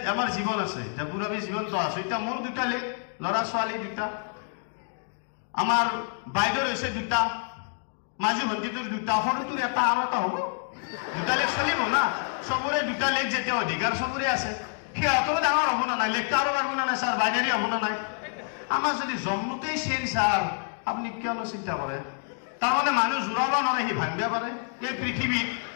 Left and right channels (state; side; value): silent; right; 57 dB below the other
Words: আমার জীবন আছে পুরাবি জীবন তো আছে এটা মোর 2টা লেগ লড়া ছোৱালী 2টা আমাৰ বাইদেউৰ হয়েছে 2টা মাঝি ভন্টিটোৰ 2টা সৰুটো এটা আৰু এটা হব 2টা লেগ চলিব না সবৰে 2টা লেগ যেতে অধিকাৰ সবৰে আছে সিহঁতৰো ডাঙৰ হব না নাই লেগটা আৰু পারব না স্যার বাইনারি হব না নাই আমার যদি জন্মতেই চেন স্যার আপনি কিয়নো চিন্তা করে তার মানে মানুষ জোৰাব নোৱাৰে সি ভাঙিব পাৰে এই পৃথিৱীত